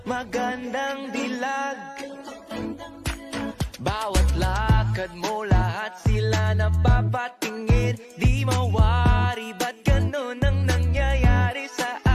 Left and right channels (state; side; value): identical; both; correlation 1.00